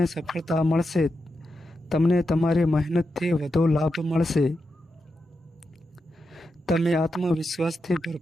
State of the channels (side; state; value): both; normal; correlation 0.87